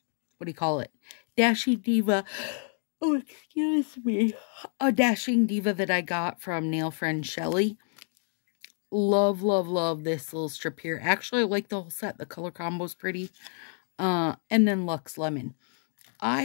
do you call it? Dashing Diva. Oh, excuse me. A Dashing Diva that I got from nail friend Shelly. Love, love, love this little strip here. Actually, I like the whole set. The color combo's pretty. And then Luxe Lemon.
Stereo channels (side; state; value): right; silent; 55 dB below the other